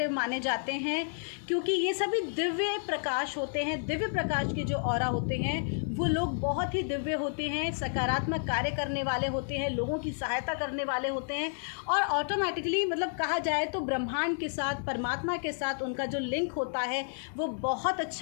माने जाते हैं, क्योंकि ये सभी दिव्य प्रकाश होते हैं। दिव्य प्रकाश के जो ऑरा होते हैं वो लोग बहुत ही दिव्य होते हैं, सकारात्मक कार्य करने वाले होते हैं, लोगों की सहायता करने वाले होते हैं, और ऑटोमेटिकली मतलब कहा जाए तो ब्रह्मांड के साथ, परमात्मा के साथ उनका जो लिंक होता है वो बहुत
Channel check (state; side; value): silent; right; digital silence